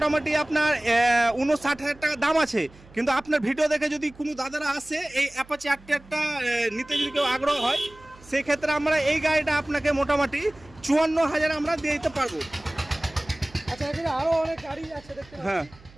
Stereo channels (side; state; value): right; noise; hum, 24 dB below the sound